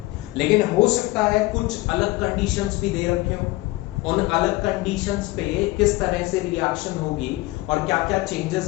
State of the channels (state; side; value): quieter; right; 20.1 dB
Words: लेकिन हो सकता है कुछ अलग कंडीशंस भी दे रखे हो, उन अलग कंडीशंस पे किस तरह से रिएक्शन होगी और क्या क्या